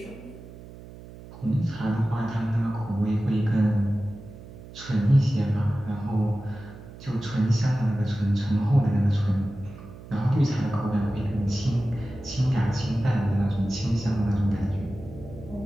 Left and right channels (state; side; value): noise; right; hum, 16 dB below the sound